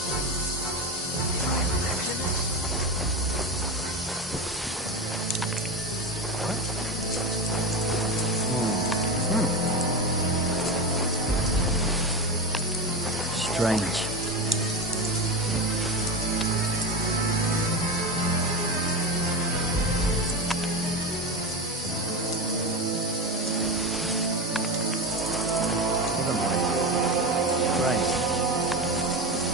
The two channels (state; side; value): normal; both; correlation 0.21